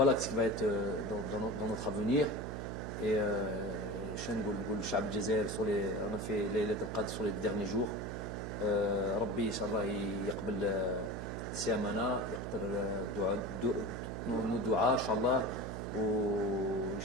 ce qui va être dans notre avenir. Et on a fait les Qadr sur les derniers jours. Rabbi, Inch'Allah, السيامنا يقدر ندعاء ان شاء الله، وان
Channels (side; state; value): right; noise; hum, 6 dB below the sound